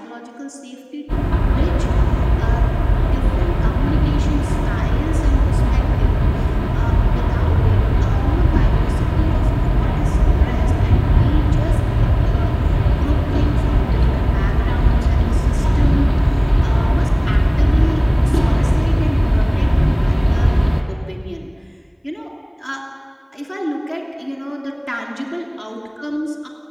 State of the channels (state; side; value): identical; both; correlation 1.00